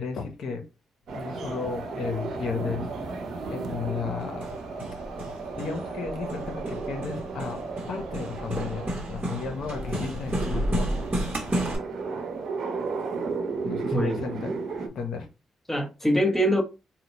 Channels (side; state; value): both; normal; correlation 0.74